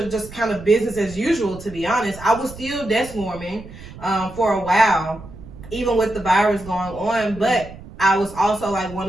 just kind of business as usual, to be honest. I was still desk warming for a while, even with the virus going on, but I was also like one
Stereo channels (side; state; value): right; noise; rumble, 16 dB below the sound